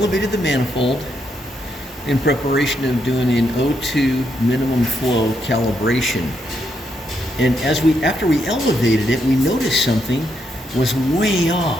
the manifold in preparation of doing an O2 minimum flow calibration. And after we elevated it, we noticed something was way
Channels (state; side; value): normal; both; correlation 0.78